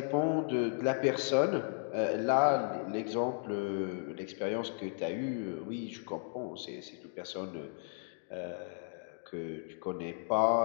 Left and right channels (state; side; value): silent; right; 55 dB below the other